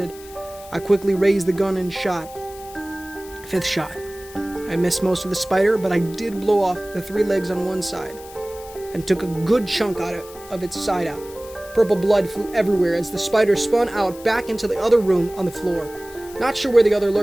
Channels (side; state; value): left; noise; hiss, 19 dB below the sound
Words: I quickly raised the gun and shot. Fifth shot. I missed most of the spider, but I did blow off the 3 legs on one side and took a good chunk out of its side out. Purple blood flew everywhere as the spider spun out back into the other room on the floor. Not sure where the other